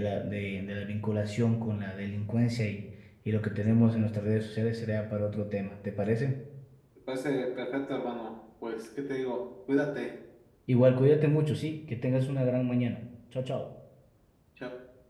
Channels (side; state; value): both; identical; correlation 1.00